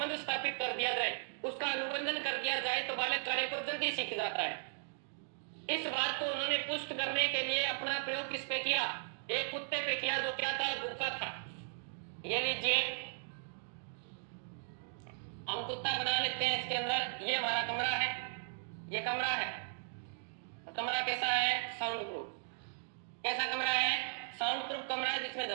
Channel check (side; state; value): left; silent; digital silence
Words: स्थापित कर दिया जाए, उसका अनुबंधन कर दिया जाए तो बालक कार्य को जल्दी सीख जाता है। इस बात को उन्होंने पुष्ट करने के लिए अपना प्रयोग किस पे किया? एक कुत्ते पे किया, जो क्या था? भूखा था। ये लीजिए, हम कुत्ता बना लेते हैं इसके अंदर। ये हमारा कमरा है, ये कमरा है। कमरा कैसा है? Sound proof. कैसा कमरा है? साउंड प्रूफ कमरा है, जिसमें